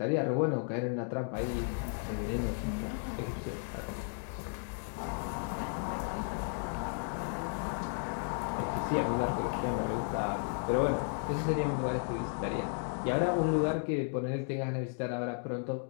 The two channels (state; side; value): silent; right; 55 dB below the other